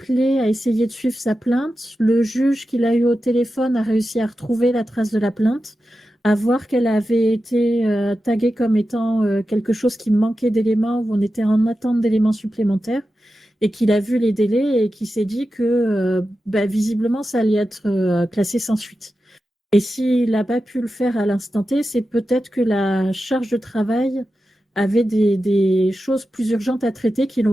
a essayé de suivre sa plainte, le juge qui l'a eu au téléphone a réussi à retrouver la trace de la plainte, à voir qu'elle avait été taguée comme étant quelque chose qui manquait d'éléments, où on était en attente d'éléments supplémentaires, et qu'il a vu les délais et qui s'est dit que visiblement ça allait être classé sans suite. Et s'il n'a pas pu le faire à l'instant T, c'est peut-être que la charge de travail avait des choses plus urgentes à traiter qui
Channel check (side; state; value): both; normal; correlation 0.92